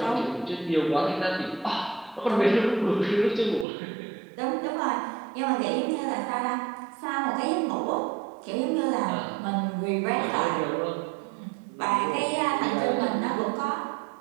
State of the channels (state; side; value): drops out; left; at 3.7 s